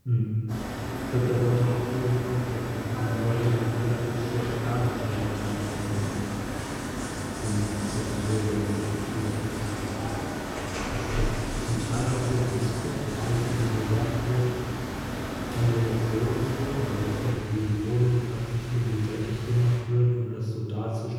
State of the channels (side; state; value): both; identical; correlation 1.00